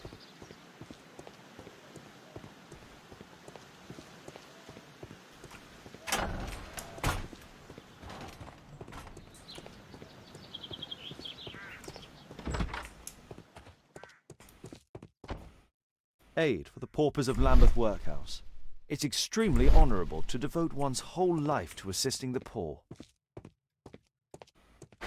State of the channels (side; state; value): both; identical; correlation 1.00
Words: Aid for the paupers of Lambeth Workhouse. It's extremely honourable to devote one's whole life to assisting the poor.